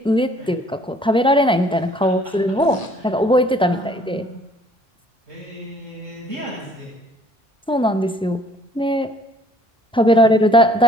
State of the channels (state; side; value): normal; both; correlation 0.59